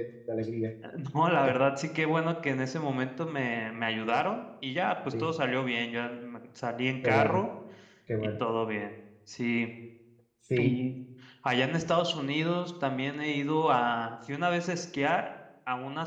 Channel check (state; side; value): identical; both; correlation 1.00